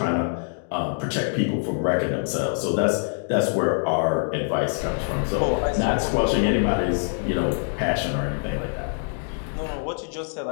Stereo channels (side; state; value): right; silent; digital silence